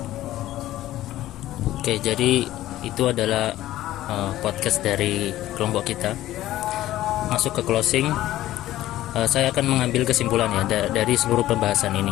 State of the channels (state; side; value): quieter; right; 14.6 dB